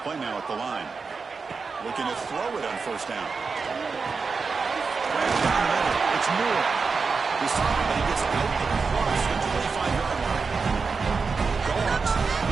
play now at the line. Looking to throw it on first down. Down the middle. It's Moore. He's talking about he gets out of the cross to the 25-yard line. Dogs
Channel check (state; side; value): quieter; left; 4.8 dB